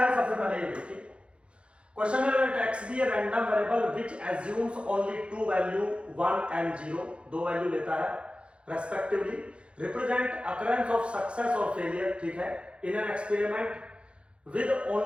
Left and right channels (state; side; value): late; left; 0.058 ms